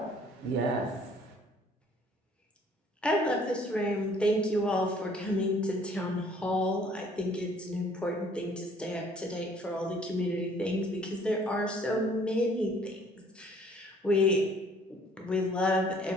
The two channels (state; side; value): normal; both; correlation 0.58